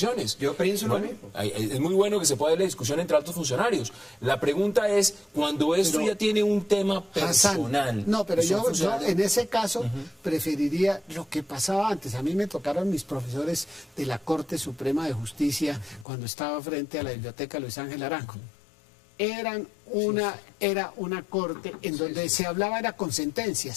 Yo pienso lo Bueno, mismo. es muy bueno que se pueda dar la discusión entre altos funcionarios. La pregunta es, cuando esto ya tiene un tema Hassan, personal. no, pero y son yo funcionarios- en ese caso preferiría lo que pasaba antes. A mí me tocaron mis profesores de la Corte Suprema de Justicia cuando estaba frente a la Biblioteca Luis Ángel Arango. Era una corte en donde se hablaba era con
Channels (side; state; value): right; drops out; at 16.1 s